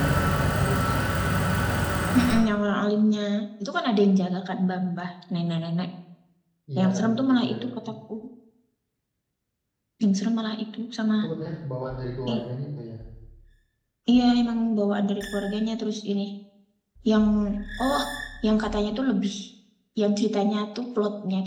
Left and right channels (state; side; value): identical; both; correlation 1.00